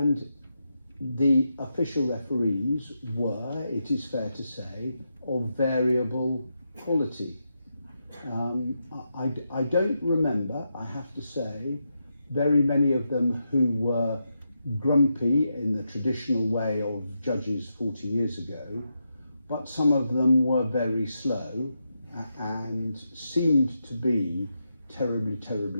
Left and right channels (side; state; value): both; inverted; correlation -0.85